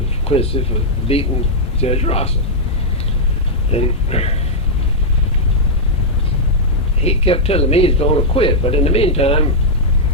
Quincy for beating Judge Rosser. And he kept telling me he's going to quit. But in the meantime,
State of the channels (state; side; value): normal; both; correlation -0.05